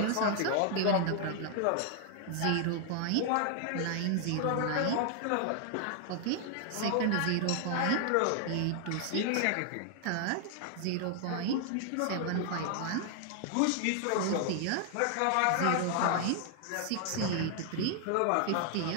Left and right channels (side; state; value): both; different; correlation 0.00